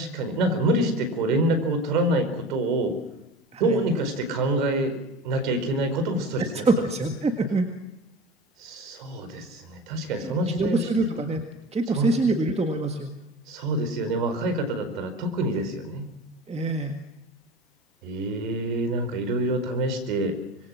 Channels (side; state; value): both; normal; correlation 0.33